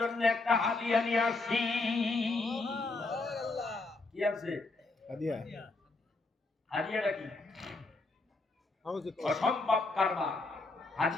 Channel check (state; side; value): quieter; right; 3.4 dB